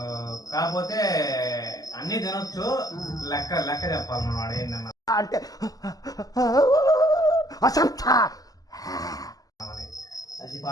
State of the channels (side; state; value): right; late; 0.17 ms